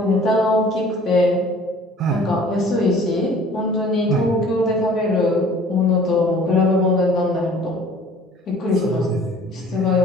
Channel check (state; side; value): normal; both; correlation 0.51